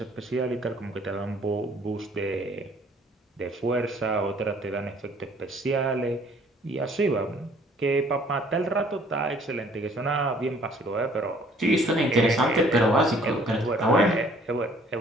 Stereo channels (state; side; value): normal; both; correlation 0.58